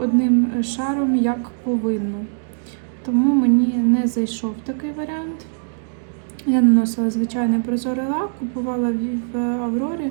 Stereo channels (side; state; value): left; silent; digital silence